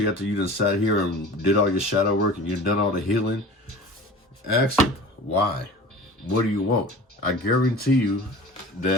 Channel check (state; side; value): normal; both; correlation 0.39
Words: after you just sat here and did all your shadow work and you've done all the healing, ask him, why? What do you want? I guarantee you